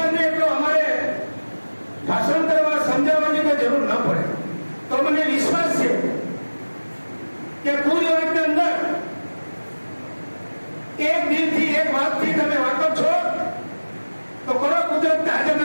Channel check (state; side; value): inverted; both; correlation -1.00